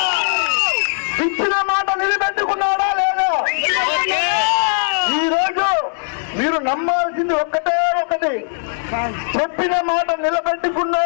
ఇచ్చిన మాట నిలబెట్టుకున్నాడా లేదా? ఈరోజు మీరు నమ్మాల్సింది ఒకటి, చెప్పిన మాట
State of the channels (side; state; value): right; silent; digital silence